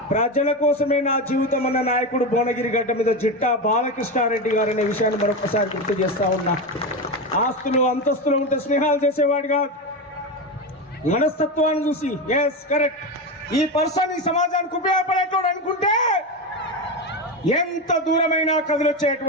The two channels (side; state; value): both; normal; correlation 0.17